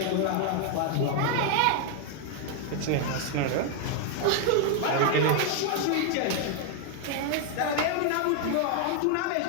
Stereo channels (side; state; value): both; different; correlation 0.00